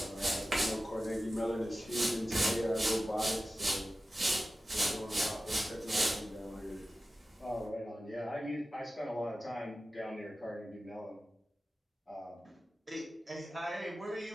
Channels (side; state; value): both; normal; correlation 0.95